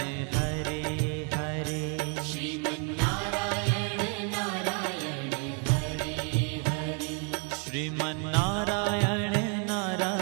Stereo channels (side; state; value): left; quieter; 38.8 dB